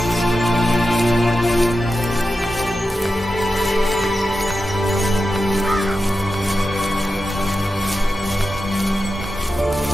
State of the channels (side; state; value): both; normal; correlation 0.91